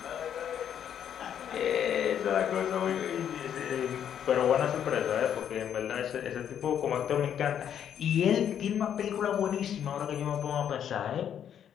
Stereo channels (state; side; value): quieter; right; 9.2 dB